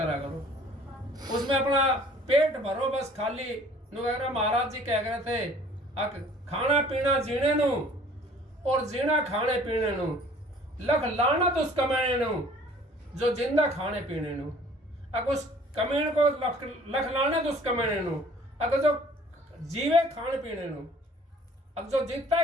करो। उसमें अपना पेट भरो बस खाली। महाराज जी कह रहे थे खाना पीना जीने नु और जीना खाने पीने नु, लख लाना तो उस कमाने नु जो जिंदा खाने पीने नु। अगर उस कमीन को लख लाना तो उस कमाने नु, अगर जो जीवे खाने पीने नु। अब जो जीता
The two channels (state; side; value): normal; both; correlation 0.53